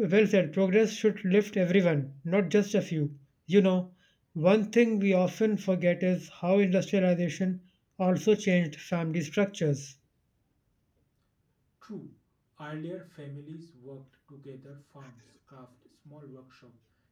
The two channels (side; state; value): both; identical; correlation 1.00